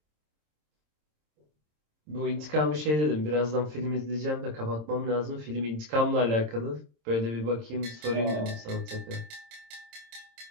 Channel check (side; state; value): left; late; 26 ms